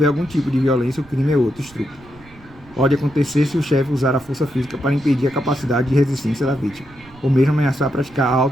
algum tipo de violência, o crime é outro, estupro. Pode acontecer se o chefe usar a força física para impedir a capacidade de resistência da vítima, ou mesmo ameaçar praticar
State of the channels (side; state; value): right; noise; rumble, 24 dB below the sound